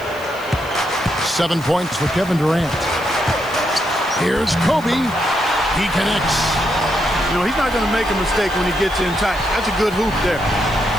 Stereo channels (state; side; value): noise; left; hiss, 21 dB below the sound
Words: 7 points for Kevin Durant. Here's Kobe. He connects. You know, he's not going to make a mistake when he gets in tight. That's a good hoop there.